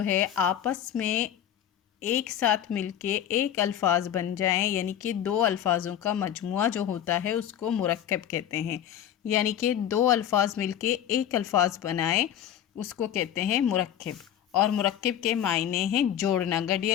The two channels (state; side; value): quieter; right; 10.4 dB